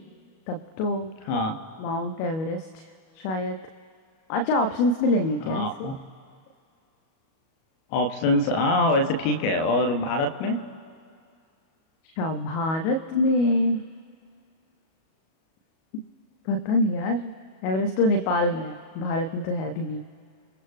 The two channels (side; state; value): right; late; 37 ms